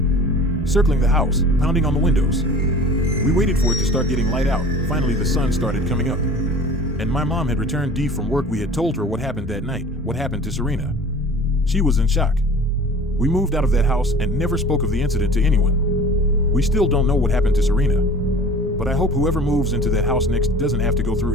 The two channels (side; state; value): both; normal; correlation 0.43